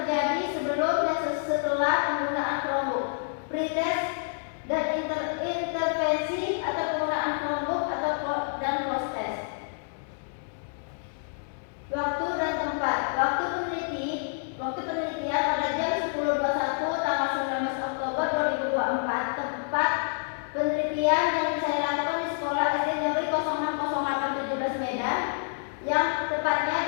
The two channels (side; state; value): right; silent; digital silence